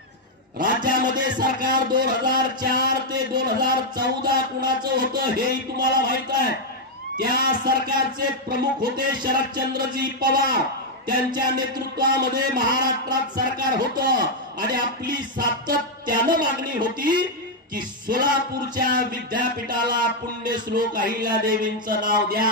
राज्यामध्ये सरकार 2004 ते 2014 कुणाचं होतं हेही तुम्हाला माहित आहे. त्या सरकारचे प्रमुख होते शरदचंद्रजी पवार. त्यांच्या नेतृत्वामध्ये महाराष्ट्रात सरकार होतं आणि आपली सातत्यानं मागणी होती की सोलापूरच्या विद्यापीठाला पुण्यश्लोक अहिल्यादेवींचं नाव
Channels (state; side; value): normal; both; correlation 0.00